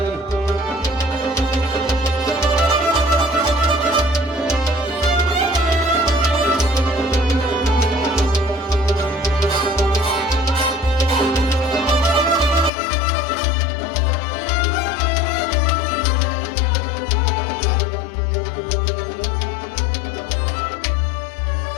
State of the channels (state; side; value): drops out; right; at 12.7 s